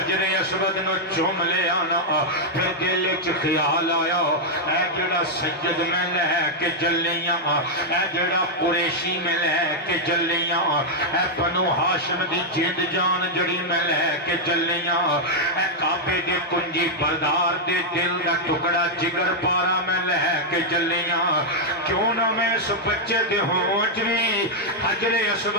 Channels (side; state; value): both; normal; correlation -0.03